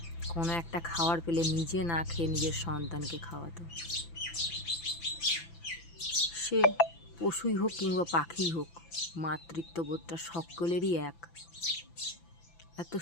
কোনো একটা খাবার পেলে নিজে না খেয়ে নিজের সন্তানকে খাওয়াতো। সে পশুই হোক কিংবা পাখিই হোক, মাতৃত্ববোধটা সকলেরই এক। এত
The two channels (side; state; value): right; late; 5.9 ms